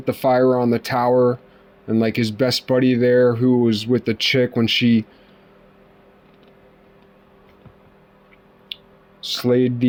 the fire on the tower, and like his best buddy there who was with the chick when she slayed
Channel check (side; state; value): both; identical; correlation 1.00